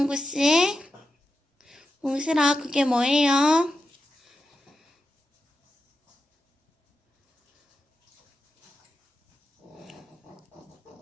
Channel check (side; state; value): both; normal; correlation 0.88